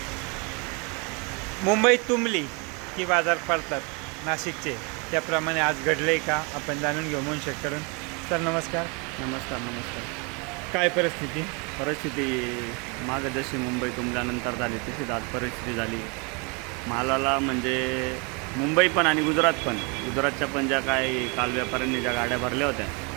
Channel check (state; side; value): quieter; left; 31.9 dB